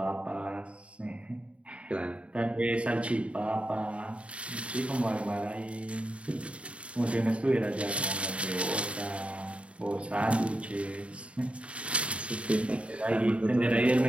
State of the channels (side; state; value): left; late; 0.061 ms